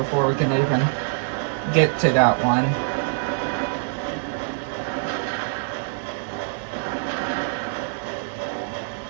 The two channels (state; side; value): silent; left; 62 dB below the other